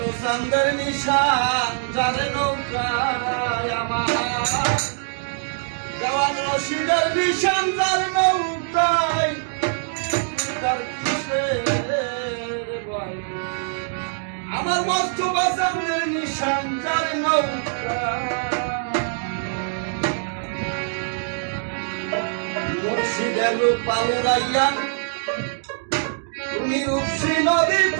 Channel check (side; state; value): left; silent; digital silence